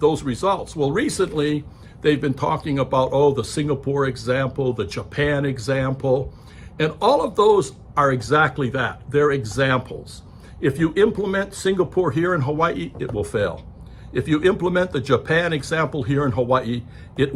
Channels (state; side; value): identical; both; correlation 1.00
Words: results? Well, recently they've been talking about, the Singapore example, the Japan example, and all of those are exactly that. They're examples. If you implement Singapore here in Hawaii, it will fail. If you implement the Japan example here in Hawaii, it